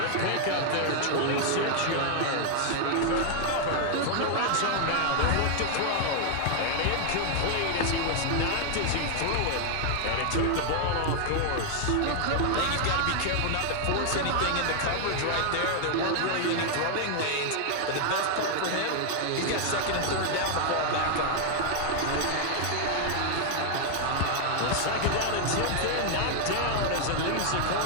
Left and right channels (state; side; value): different; both; correlation 0.00